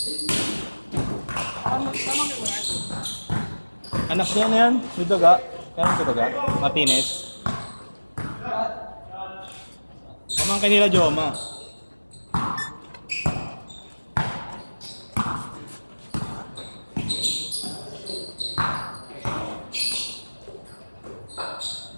Anak niya na yan, may daga. Kaya may daga? Martinez. Pamangkin nila Joma.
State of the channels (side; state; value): both; inverted; correlation -1.00